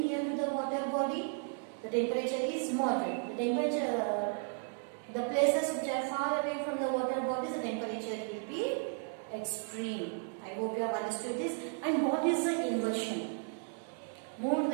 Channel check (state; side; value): silent; left; 55 dB below the other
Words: to the water body, the temperature is moderate. The places which are far away from the water bodies, the temperature will be extreme. I hope you have understood this. And what is the inversion? Move to